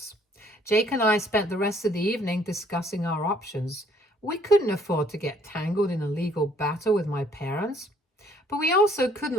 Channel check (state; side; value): normal; both; correlation 0.62